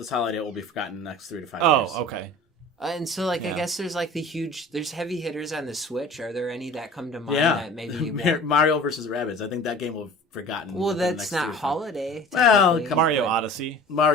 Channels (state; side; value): normal; both; correlation 0.42